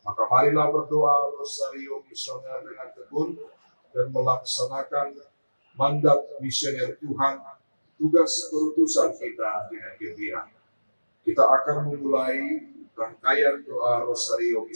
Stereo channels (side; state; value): both; inverted; correlation -1.00